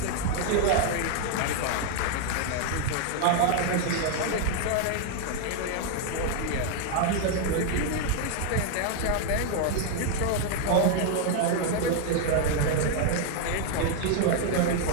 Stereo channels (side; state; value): both; different; correlation 0.00